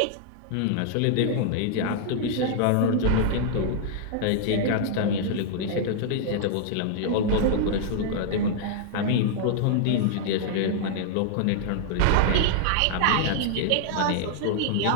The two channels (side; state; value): both; different; correlation -0.01